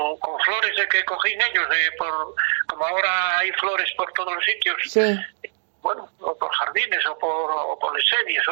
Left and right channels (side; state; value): left; silent; digital silence